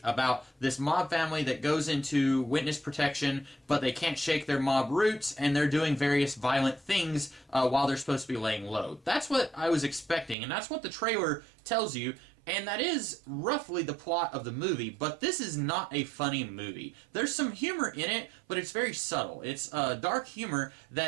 about this mob family that goes into witness protection, but they can't shake their mob roots, and they're doing various violent things while they're supposed to be laying low. That's what I was expecting, and that's what the trailer tells you. And that is roughly the plot of the movie, but this is not a funny movie. There's some humor in it, but it's very subtle. It's dark humor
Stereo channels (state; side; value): drops out; left; at 10.4 s